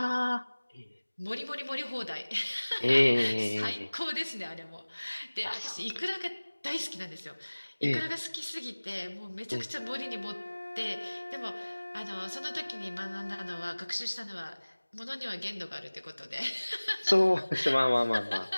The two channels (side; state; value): both; inverted; correlation -1.00